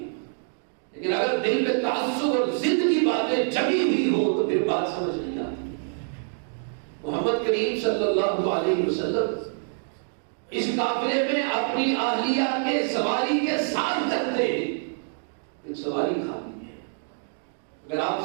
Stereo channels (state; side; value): silent; left; digital silence